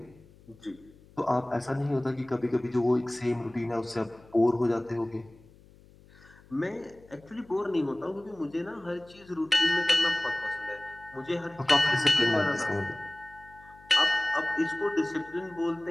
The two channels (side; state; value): left; noise; hum, 25 dB below the sound